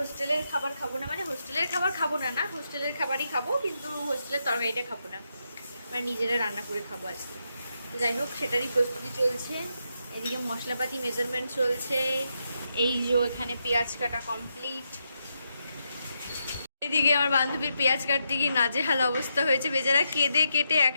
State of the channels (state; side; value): inverted; both; correlation -0.82